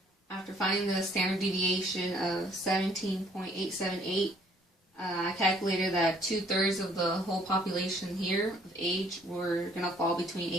after finding the standard deviation of 17.878, I calculated that 2/3 of the whole population here of age were going to fall between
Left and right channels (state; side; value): normal; both; correlation 0.61